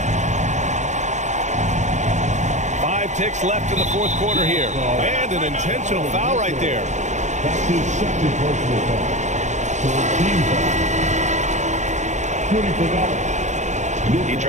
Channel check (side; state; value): left; late; 0.34 ms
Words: Five ticks left in the fourth quarter here. And an intentional foul right there. That's his second personal foul. He